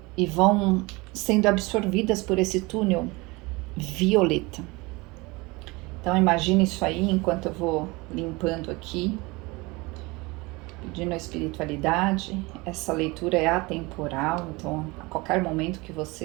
e vão sendo absorvidas por esse túnel violeta. Então imagine isso aí enquanto eu vou limpando aqui, pedindo a espiritualidade. Essa leitura é atemporal, então a qualquer momento que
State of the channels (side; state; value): left; quieter; 24.2 dB